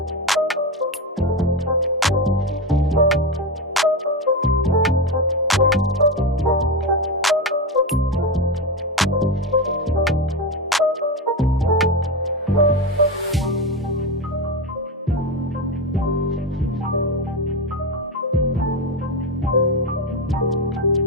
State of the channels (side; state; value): both; normal; correlation 0.15